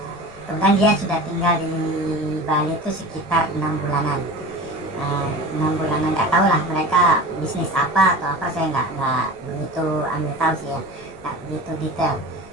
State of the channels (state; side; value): noise; left; rumble, 23 dB below the sound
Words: Kemudian dia sudah tinggal di Bali itu sekitar 6 bulanan. 6 bulanan, nggak tahu lah mereka bisnis apa atau apa, saya nggak begitu ambil tahu sih ya, nggak begitu detail.